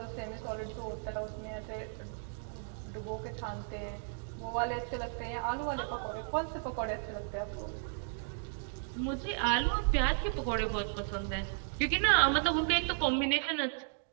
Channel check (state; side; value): silent; left; digital silence